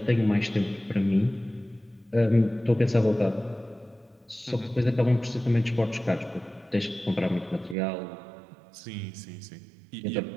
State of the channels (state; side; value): drops out; left; at 7.8 s